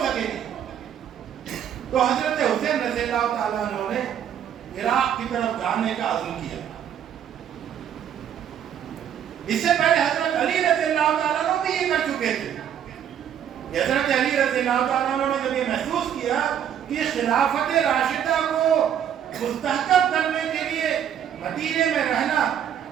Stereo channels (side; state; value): left; quieter; 9.4 dB